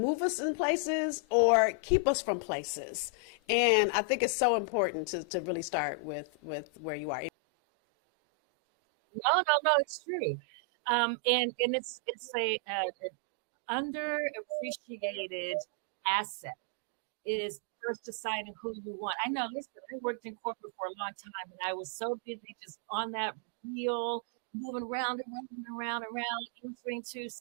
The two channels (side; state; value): left; drops out; at 7.3 s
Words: us in places or keep us from places. And I think it's so important to really start with where you are. Anyway, sorry, go ahead. I just had to say that. No, it's true. And it's a underappreciated asset. Is first deciding who you want. I know this. I worked in corporate for a long time, and I was so busy just on that wheel, moving around and around, answering to